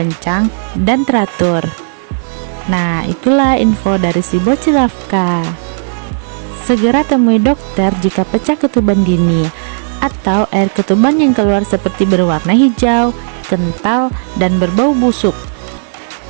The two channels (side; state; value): left; silent; digital silence